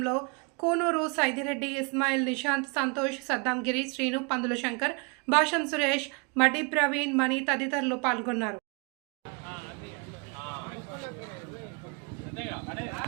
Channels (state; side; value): quieter; left; 33.2 dB